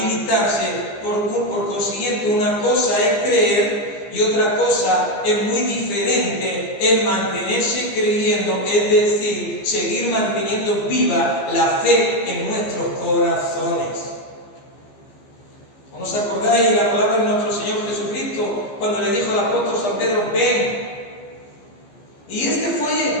Por consiguiente, una cosa es creer y otra cosa es muy diferente, es mantenerse creyendo, es decir, seguir manteniendo viva la fe en nuestros corazones. ¿No os acordáis la palabra de nuestro Señor Jesucristo cuando le dijo al apóstol San Pedro, ven? Y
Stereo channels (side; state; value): right; late; 15 ms